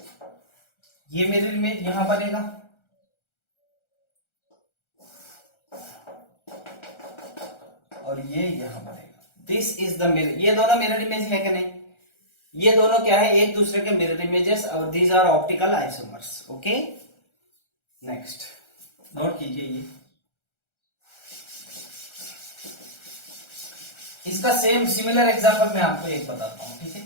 ये मिरर इमेज यहां बनेगा, और ये यहां बनेगा। This is the mirror. ये दोनों मिरर इमेज है कि नहीं? ये दोनों क्या है? एक दूसरे के मिरर इमेजेस, और these are optical isomers. Okay, next note कीजिए। ये इसका सेम सिमिलर एग्जांपल मैं आपको एक बताता हूं, ठीक है?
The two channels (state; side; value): late; right; 1.3 ms